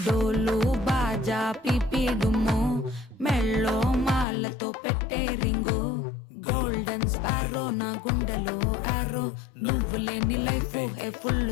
డోలు బాజా పిపిడుము మెళ్ళో మాలతో పెట్టే రింగు గోల్డెన్ స్పారో నా గుండెలో ఆరో నువ్వు లేని life A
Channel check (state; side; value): drops out; right; at 4.2 s